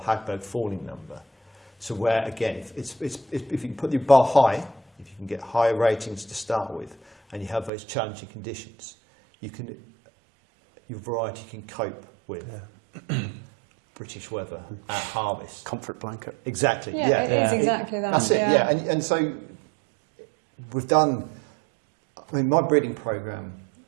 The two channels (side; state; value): left; drops out; at 7.7 s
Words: Hagberg falling number. So where, again, if you can put the bar high, if you can get higher ratings to start with, and you have those challenging conditions, your variety can cope with British weather at harvest. Comfort blanket. Exactly. Yeah, it is exactly that. That's it. Yeah, and so we've done. I mean, my breeding program